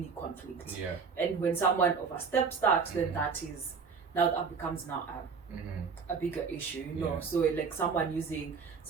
conflict. And when someone oversteps that, then that becomes now a bigger issue, So like someone using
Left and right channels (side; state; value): left; quieter; 5.5 dB